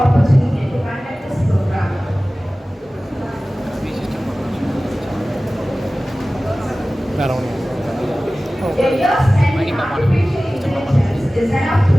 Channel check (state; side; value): normal; both; correlation 0.97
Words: to conduct this program. A year spent in artificial intelligence is enough to